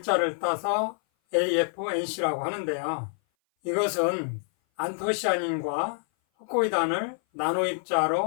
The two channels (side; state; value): right; silent; 57 dB below the other